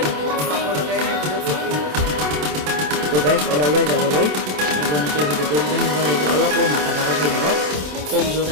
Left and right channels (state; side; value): late; left; 27 ms